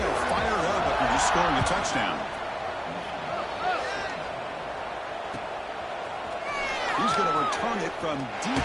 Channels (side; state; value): both; identical; correlation 1.00